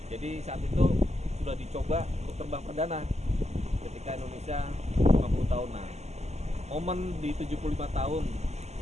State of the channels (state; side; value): late; left; 0.32 ms